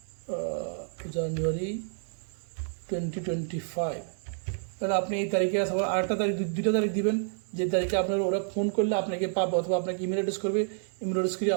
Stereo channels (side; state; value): left; silent; 58 dB below the other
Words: জানুয়ারি 2025। তাহলে আপনি এই তারিখে আবার আরেকটা তারিখ, দুইটা তারিখ দিবেন, যে তারিখে আপনার ওরা ফোন করলে আপনাকে পাবে, অথবা আপনাকে ইমেল অ্যাড্রেস করবে, ইমেল অ্যাড্রেস করে